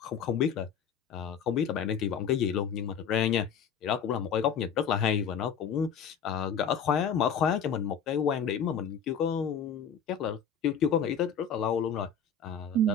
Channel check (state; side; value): quieter; right; 6.2 dB